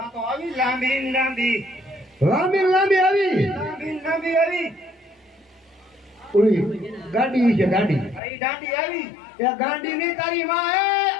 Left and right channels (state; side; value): drops out; right; at 8.2 s